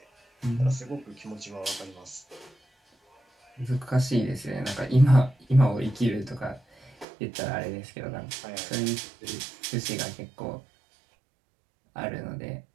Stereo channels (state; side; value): drops out; left; at 7.1 s